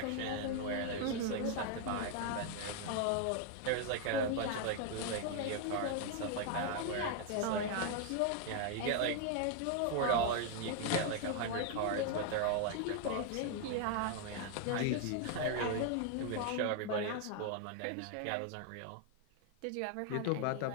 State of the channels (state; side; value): different; both; correlation 0.00